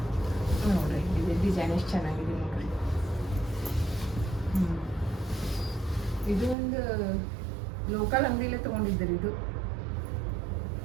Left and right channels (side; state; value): left; drops out; at 6.6 s